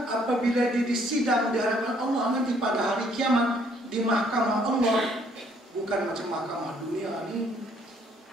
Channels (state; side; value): normal; both; correlation 0.64